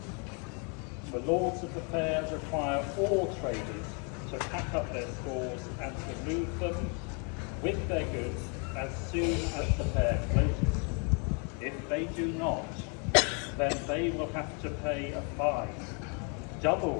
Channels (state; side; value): quieter; right; 36.7 dB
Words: The Lords of the Fair require all traders to pack up their stores and to move them with their goods as soon as the fair closes. If they do not, then they will have to pay a fine,